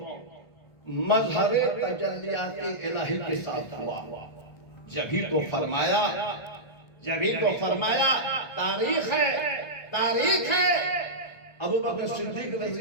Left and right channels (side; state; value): right; late; 1.6 ms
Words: مظہر تجلیات الہی کے ساتھ ہوا. جبھی تو فرمایا تاریخ ہے ابوبکر صدیق